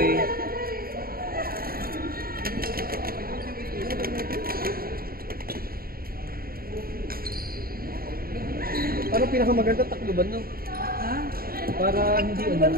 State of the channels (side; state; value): left; late; 0.43 ms